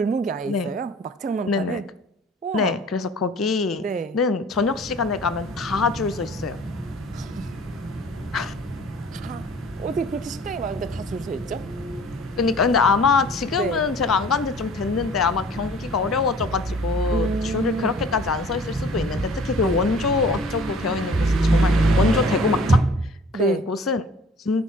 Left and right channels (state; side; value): normal; both; correlation 0.49